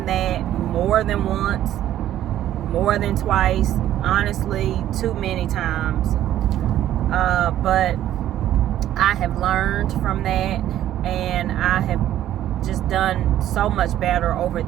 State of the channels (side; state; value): left; quieter; 12.3 dB